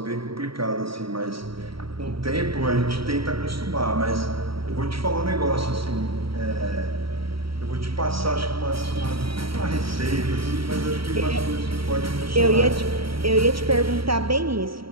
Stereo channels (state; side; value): late; left; 0.75 ms